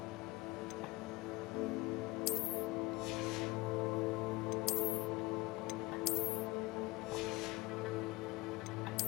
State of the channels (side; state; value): right; quieter; 22.4 dB